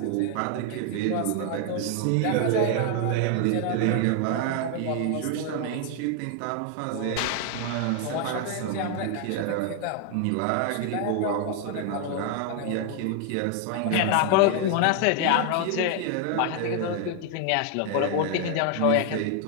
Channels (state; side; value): different; both; correlation 0.00